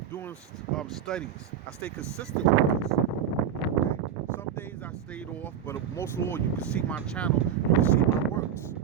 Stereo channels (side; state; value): left; quieter; 8.8 dB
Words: Doing studies. I stay consistent with this. Some days I stayed off, but most of all, you can see my channel, you can see my works,